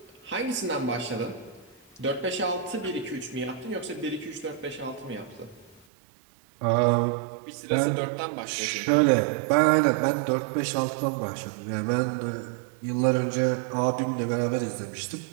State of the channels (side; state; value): left; drops out; at 5.9 s